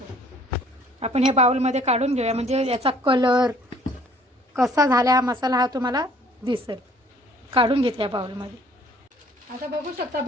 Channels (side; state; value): both; normal; correlation 0.57